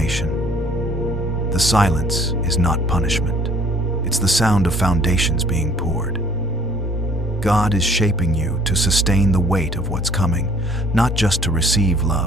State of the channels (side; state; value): both; normal; correlation 0.56